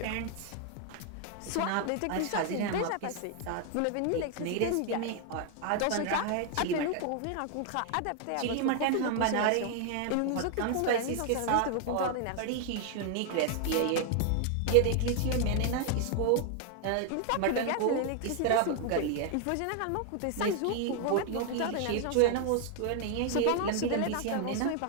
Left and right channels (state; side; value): different; both; correlation 0.00